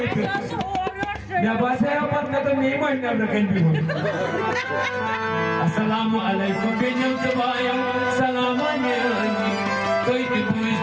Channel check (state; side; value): identical; both; correlation 1.00